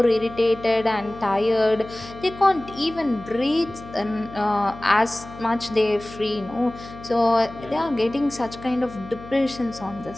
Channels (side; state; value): left; noise; hum, 16 dB below the sound